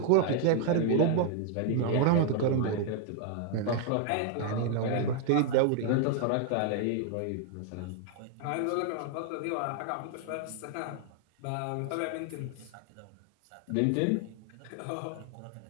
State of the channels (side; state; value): both; different; correlation 0.00